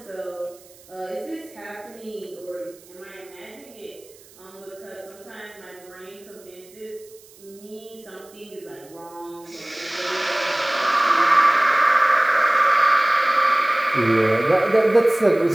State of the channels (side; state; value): right; noise; hiss, 25 dB below the sound